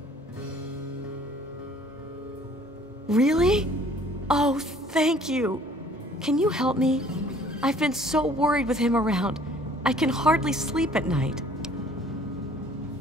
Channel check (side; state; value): both; normal; correlation 0.55